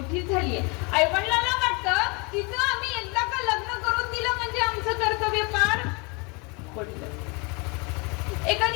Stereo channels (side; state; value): right; quieter; 29.7 dB